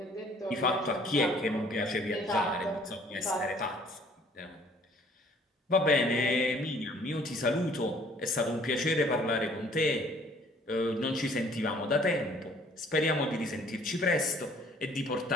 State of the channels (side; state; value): both; normal; correlation 0.57